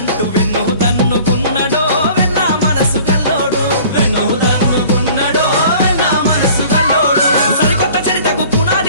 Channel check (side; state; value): both; inverted; correlation -0.48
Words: వెన్ను తన్నుకున్నడో వెన్నా మనసు కల్లోడు వెన్ను తన్నుకున్నడో వెన్నా మనసు కల్లోడు సరికొత్త చరితకు